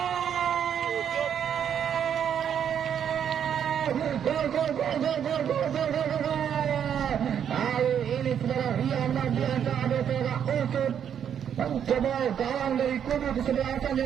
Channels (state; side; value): quieter; left; 8.7 dB